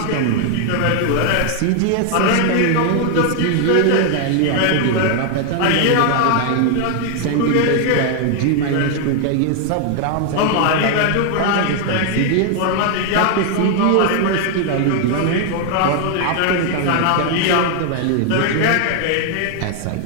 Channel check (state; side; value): different; both; correlation 0.00